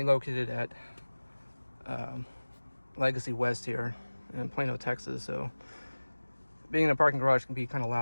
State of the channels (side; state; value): both; inverted; correlation -1.00